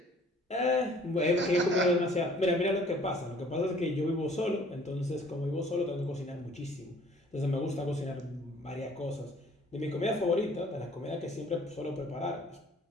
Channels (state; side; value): normal; both; correlation 0.55